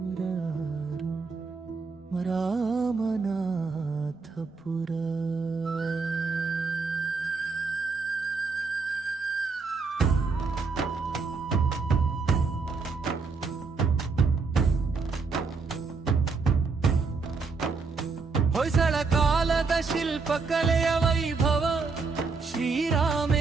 ರಾಮನಾಥಪುರ. ಹೊಯ್ಸಳ ಕಾಲದ ಶಿಲ್ಪಕಲೆಯ ವೈಭವ,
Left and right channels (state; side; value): quieter; left; 4.5 dB